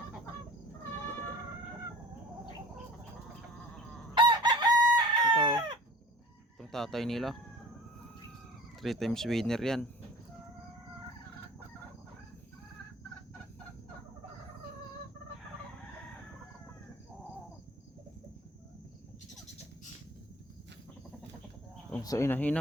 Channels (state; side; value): normal; both; correlation 0.43